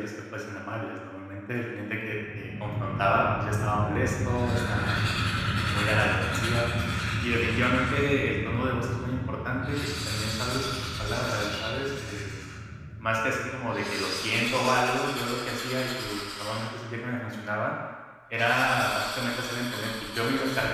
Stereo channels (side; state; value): both; identical; correlation 1.00